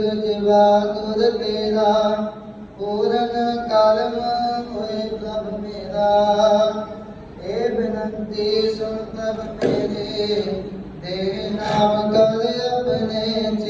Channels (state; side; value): identical; both; correlation 1.00